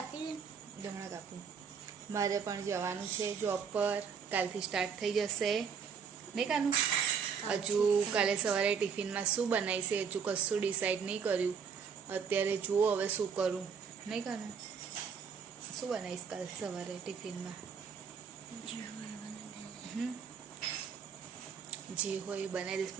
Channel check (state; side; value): quieter; left; 6.4 dB